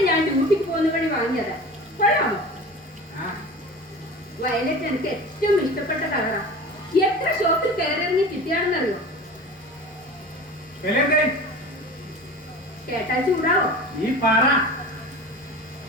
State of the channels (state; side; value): normal; both; correlation 0.35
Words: ഞാൻ ഡ്യൂട്ടിക്ക് പോകുന്ന വഴി വാങ്ങിയതാ. കൊള്ളാമോ? വയലറ്റ് എനിക്ക് ഏറ്റവും ഇഷ്ടപ്പെട്ട കളറാ. എത്ര ഷോപ്പിൽ കയറിറങ്ങി കിട്ടിയാണെന്നറിയോ? കേട്ടാൽ ചൂടാവോ? ഈ പറ.